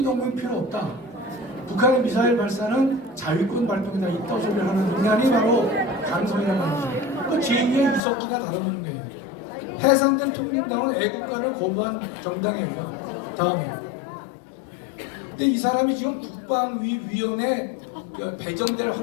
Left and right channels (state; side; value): drops out; right; at 8.0 s